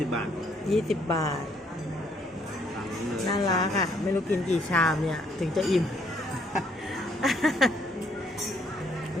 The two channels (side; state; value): both; normal; correlation 0.68